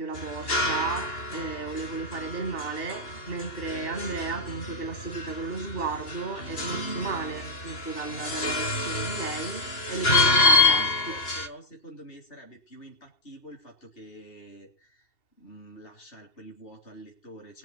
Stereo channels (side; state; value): right; late; 2.7 ms